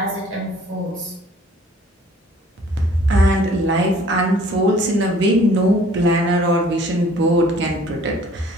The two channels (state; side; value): normal; both; correlation 0.55